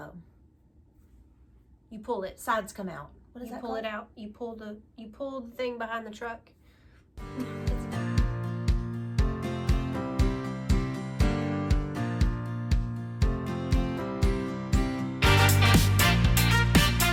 you pull it. Sides come out. What is that called? You pull it out. You pull the thing behind the truck.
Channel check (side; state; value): both; identical; correlation 1.00